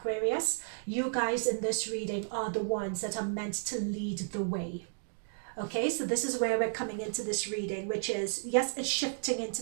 you guys in this reading are the ones that are meant to lead the way. Okay, so this is where we're coming into this reading, which is, yes, it's shifting into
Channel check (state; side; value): silent; left; digital silence